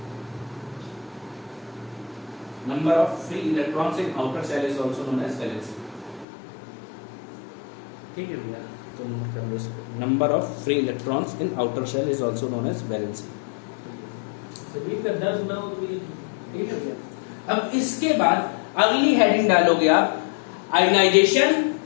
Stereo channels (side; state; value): right; drops out; at 6.2 s